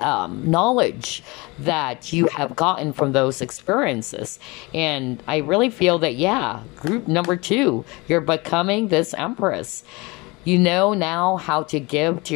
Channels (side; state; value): right; quieter; 24.8 dB